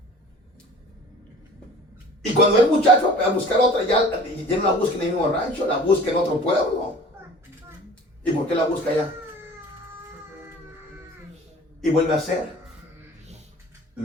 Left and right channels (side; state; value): both; normal; correlation 0.45